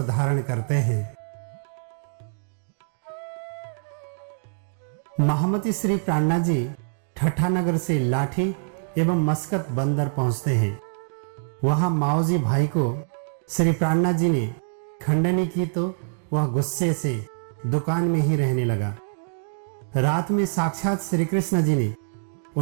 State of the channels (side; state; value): left; silent; 60 dB below the other